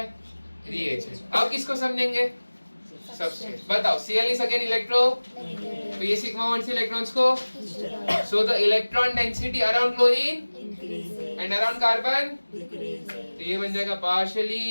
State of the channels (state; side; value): inverted; both; correlation -1.00